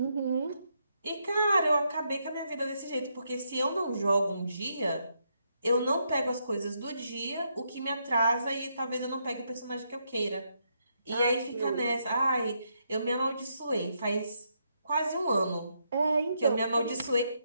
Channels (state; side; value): inverted; both; correlation -0.78